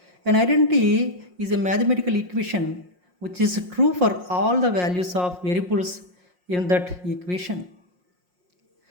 An identity is a mathematical equation which is true for all the values of variables in that equation.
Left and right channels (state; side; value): late; left; 5.6 ms